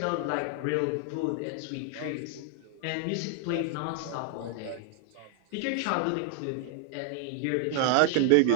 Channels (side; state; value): both; different; correlation 0.00